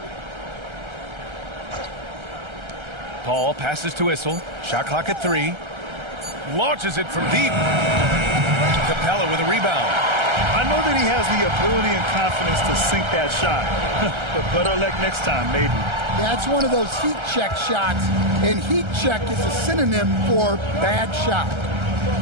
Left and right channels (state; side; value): late; left; 1.3 ms